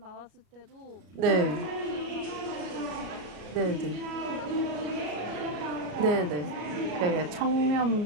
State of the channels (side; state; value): left; late; 33 ms